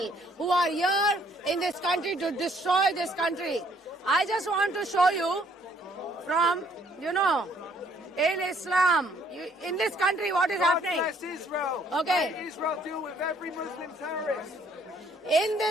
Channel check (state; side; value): normal; both; correlation 0.64